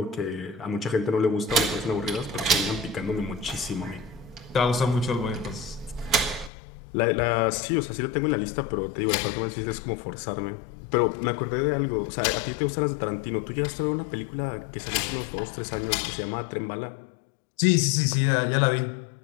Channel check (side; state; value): right; drops out; at 6.5 s